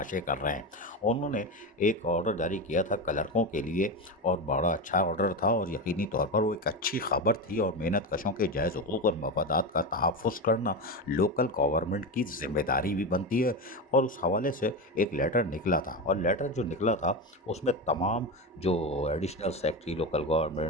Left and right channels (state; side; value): normal; both; correlation 0.18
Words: कर रहे हैं। उन्होंने एक ऑर्डर जारी किया था क्लर्कों के लिए, और बड़ा अच्छा ऑर्डर था, और यकीनी तौर पर वो एक अच्छी खबर थी, और मेहनत कशों के जायज़ हुकूक और मफादात का तहफ़्फ़ुज़ करना लोकल गवर्नमेंट की ज़िम्मेदारी भी बनती है। और उस हवाले से एक लेटर निकला था, और लेटर जो निकला था उसमें तमाम जो एडिशनल सेक्रेटरी लोकल